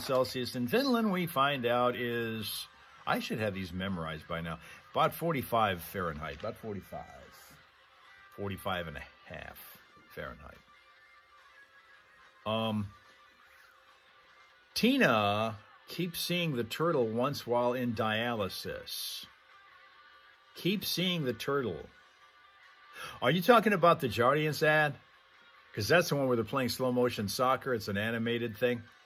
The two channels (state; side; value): identical; both; correlation 1.00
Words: Celsius in Finland, we find out is, I should have these memorized by now, about 45 Fahrenheit, about 45. 45 and a half Fahrenheit. Tina keeps seeing the turtle once while in dialysis. Keep seeing the turtle. Are you talking about the Jardiance ad? Because that's the one where they're playing slow motion soccer. It's an animated thing.